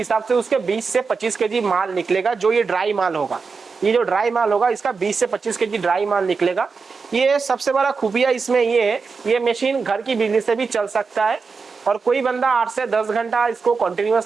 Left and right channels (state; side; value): quieter; left; 4.9 dB